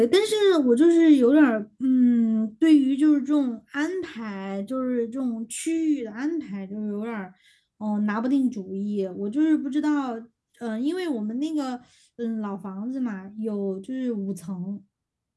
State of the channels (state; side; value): identical; both; correlation 1.00